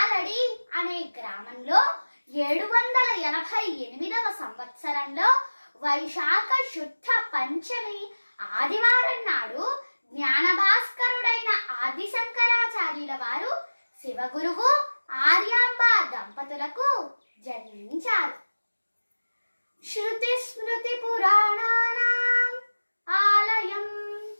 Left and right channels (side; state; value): both; inverted; correlation -1.00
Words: అనే గ్రామంలో 788వ సంవత్సరంలో వైశాఖ శుద్ధ పంచమి ఆదివారం నాడు జ్ఞానభాస్కరుడైన ఆదిశంకరాచార్యుల వారు శివగురువు ఆర్యాంబ దంపతులకు జన్మించారు. శృతి స్మృతి పురాణానాం ఆలయం